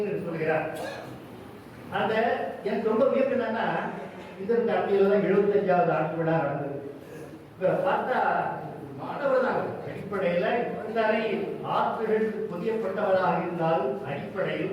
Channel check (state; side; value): identical; both; correlation 1.00